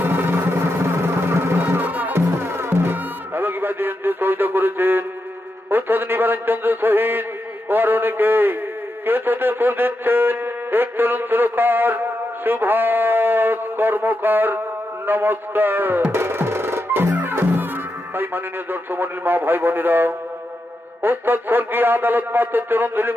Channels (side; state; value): both; normal; correlation 0.86